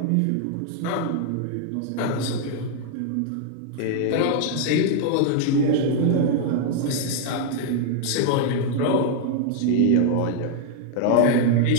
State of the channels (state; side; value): different; both; correlation 0.00